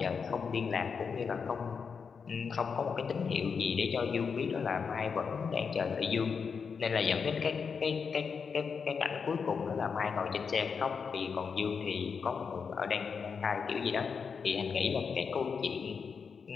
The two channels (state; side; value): quieter; right; 5.9 dB